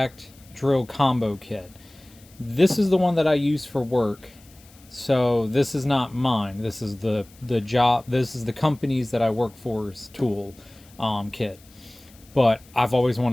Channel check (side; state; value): left; noise; hiss, 26 dB below the sound